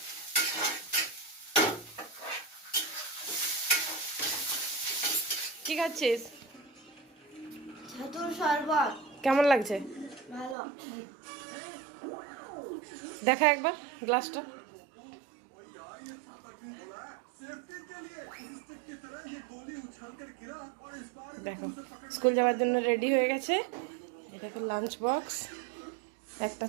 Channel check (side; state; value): left; drops out; at 10.6 s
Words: কি খাচ্ছিস? ছাতুর শরবত। কেমন লাগছে? ভালো। দেখা একবার গ্লাসটা। দেখো, স্কুল যাওয়ার জন্য রেডি হয়ে গেছে। এটা দেখো লাঞ্চ বক্স, একটা